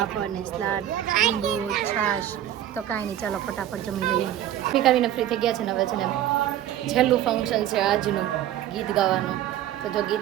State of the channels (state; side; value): quieter; left; 11.9 dB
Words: ને સલાડ, લીંબુ, છાશ. તો કાંઈ નહીં, ચાલો ફટાફટ જમી લઈએ. ફીકાવીને ફ્રી થઈ ગયા છે ને. હવે છે ને છેલ્લું ફંક્શન છે આજનું, ગીત ગાવાનું. તો જો